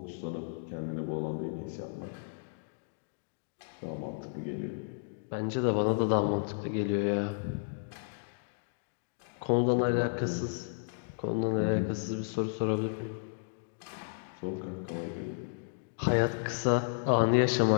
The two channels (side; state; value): right; silent; digital silence